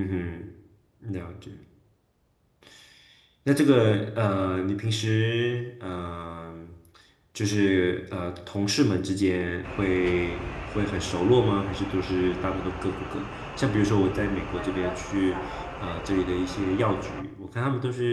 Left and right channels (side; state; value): both; identical; correlation 1.00